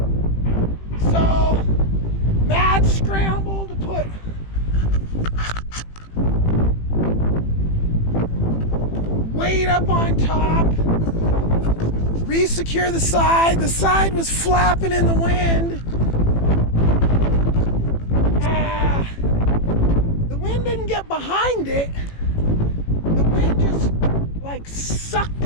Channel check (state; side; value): late; right; 18 ms